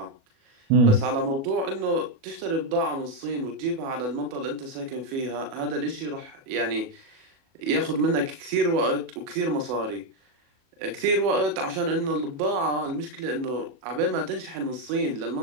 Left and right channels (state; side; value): late; left; 37 ms